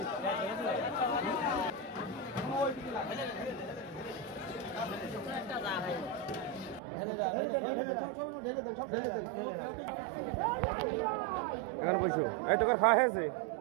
এখানে বসো। এই তো খাওয়া হয়েছে,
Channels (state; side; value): drops out; left; at 6.8 s